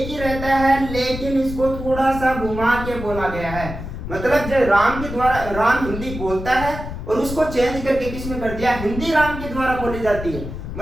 ही रहता है, लेकिन इसको थोड़ा सा घुमा के बोला गया है। मतलब जो राम के द्वारा, राम हिंदी बोलता है और उसको चेंज करके किसने कर दिया, हिंदी राम के द्वारा बोली जाती है।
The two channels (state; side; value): noise; left; rumble, 8 dB below the sound